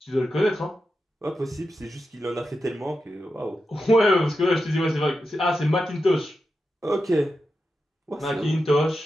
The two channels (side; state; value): both; normal; correlation 0.89